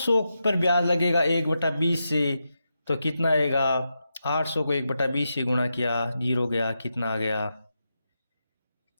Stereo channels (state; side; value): inverted; both; correlation -0.87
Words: पर ब्याज लगेगा 1/20 से, तो कितना आएगा 800 को 1/20 से गुणा किया 0 गया, कितना आ गया